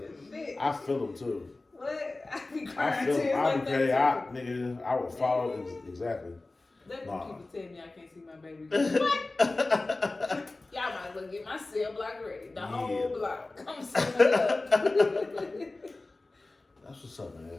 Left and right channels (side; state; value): right; quieter; 3.1 dB